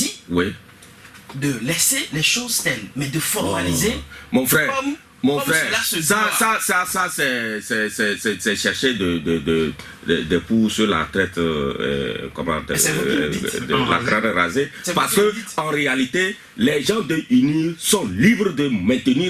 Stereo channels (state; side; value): identical; both; correlation 1.00